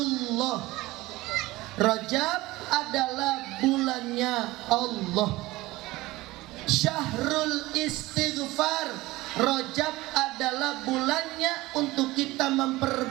Rajab adalah bulannya Allah. Syahrul istighfar, Rajab adalah bulannya untuk kita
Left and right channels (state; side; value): quieter; left; 19.2 dB